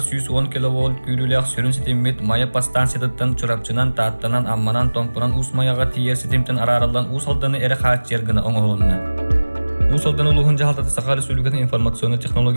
110 киловольт күрүләк сөрүн сетимет мая пастанциятан чурапчынан тааттанан амманан томпуран ус маяга тиер сетимтен араралдан усалданы эре хаат жергына оңолунна. Усалдан улугун жаалтаты Саха Республикатын информационный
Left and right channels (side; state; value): both; inverted; correlation -1.00